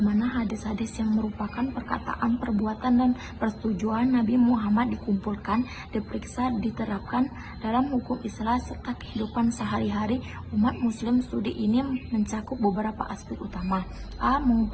hadis-hadis yang merupakan perkataan, perbuatan, dan persetujuan Nabi Muhammad dikumpulkan, diperiksa, diterapkan dalam hukum Islam serta kehidupan sehari-hari umat muslim. Studi ini mencakup beberapa aspek utama. A.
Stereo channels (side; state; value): both; identical; correlation 1.00